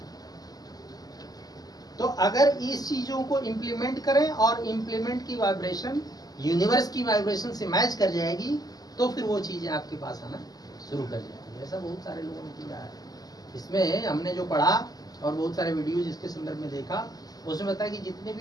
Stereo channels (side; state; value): right; late; 0.18 ms